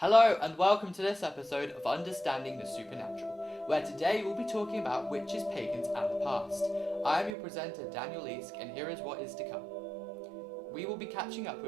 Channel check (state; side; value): drops out; left; at 7.4 s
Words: and welcome to this episode of Understanding the Supernatural, where today we'll be talking about witches, pagans and the past. I am your presenter Daniel Eask and here is what is to come. We will be catching up